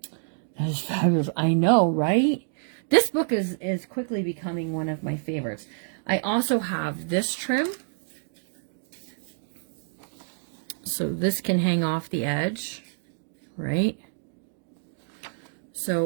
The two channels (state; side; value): silent; left; digital silence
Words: That is fabulous. I know, right? This book is quickly becoming one of my favorites. I also have this trim. So this can hang off the edge, right?